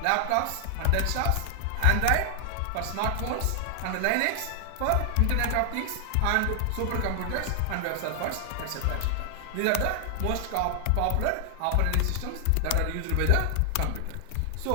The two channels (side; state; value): both; different; correlation 0.00